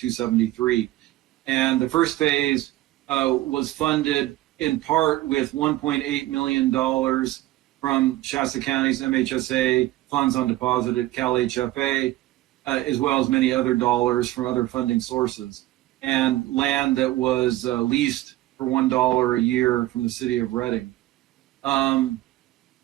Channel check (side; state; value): left; quieter; 16.4 dB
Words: And the first phase was funded in part with $1.8 million from Shasta County's MHSA funds on deposit at Cal HFA, as well as many other dollars from other funding sources, and land that was leased for $1 a year from the city of Reading. In